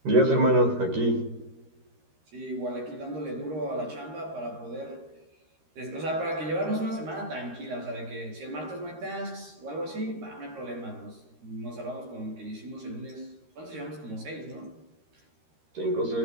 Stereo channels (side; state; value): left; late; 13 ms